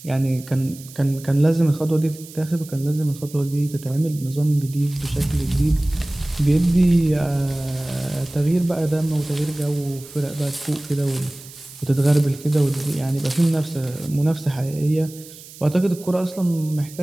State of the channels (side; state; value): right; noise; hiss, 18 dB below the sound